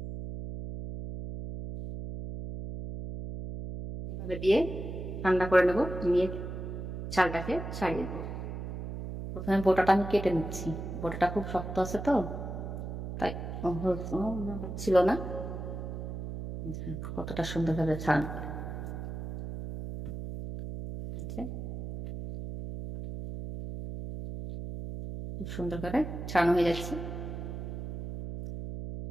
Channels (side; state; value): right; noise; hum, 7 dB below the sound